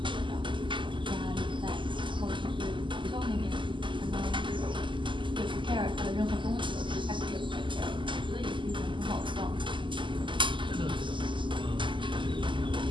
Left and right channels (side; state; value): left; late; 0.24 ms